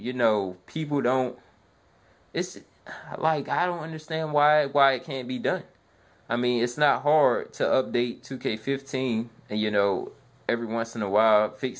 know, people don't, it's like, I don't understand why it can't be done. I mean, it's not hard to update 2K15 and, you know, every once in a while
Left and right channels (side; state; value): both; identical; correlation 1.00